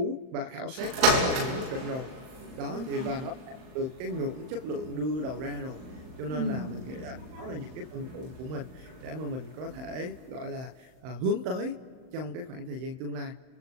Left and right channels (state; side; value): late; left; 39 ms